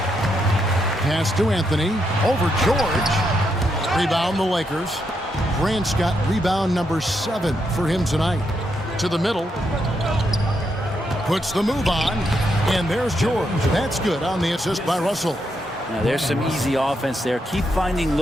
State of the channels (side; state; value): both; normal; correlation 0.80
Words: Pass to Anthony. Over George. Rebound the Lakers. Grant's got rebound number 7 for him tonight. To the middle. Puts the move on. And there's George. That's good on the assist by Russell. Now, there's some easy offense there. Keep finding